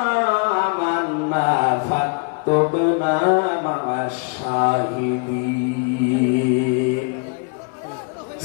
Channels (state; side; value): quieter; right; 35.4 dB